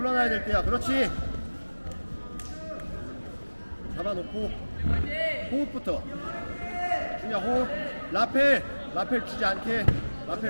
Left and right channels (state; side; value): inverted; both; correlation -1.00